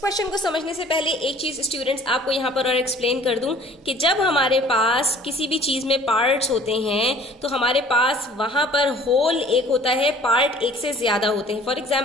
को समझने से पहले एक चीज स्टूडेंट्स आपको यहाँ पर और एक्सप्लेन कर दूं कि जब हमारे पास किसी भी चीज में पार्ट्स होते हैं तो हमारे पास वहां पर होल एक होता है, पार्ट एक से ज्यादा होते हैं। फॉर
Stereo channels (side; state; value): both; normal; correlation 0.51